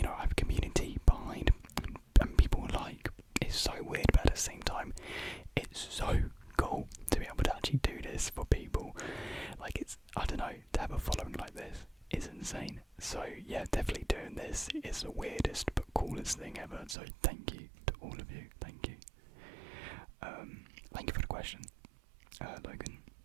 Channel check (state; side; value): drops out; left; at 16.9 s